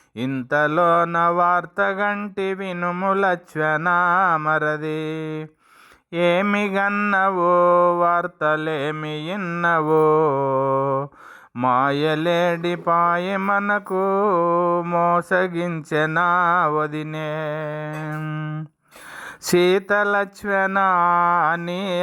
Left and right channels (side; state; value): both; identical; correlation 1.00